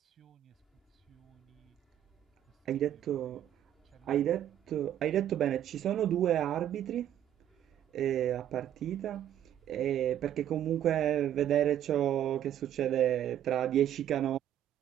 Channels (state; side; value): quieter; left; 11.0 dB